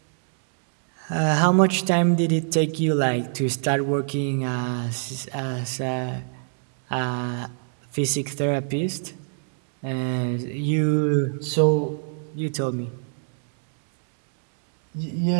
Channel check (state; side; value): silent; left; digital silence